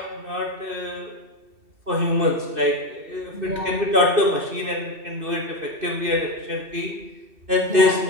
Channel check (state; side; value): late; left; 2.6 ms